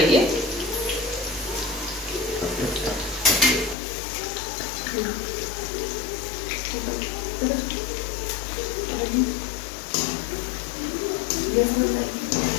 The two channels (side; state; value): right; drops out; at 3.8 s